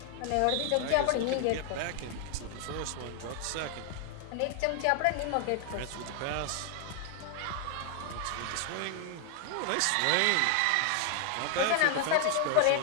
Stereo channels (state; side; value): different; both; correlation 0.00